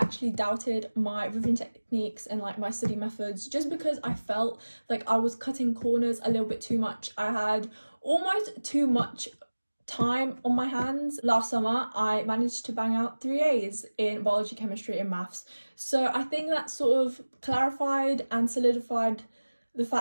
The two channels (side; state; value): both; inverted; correlation -1.00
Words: doubted my revision techniques and like my study methods, just because I felt like I was cutting corners a little bit too much. I had almost too much time on my hands. Last summer I managed to bang out 3 A's in biology, chemistry and maths, so I think that sort of clarified and solidified the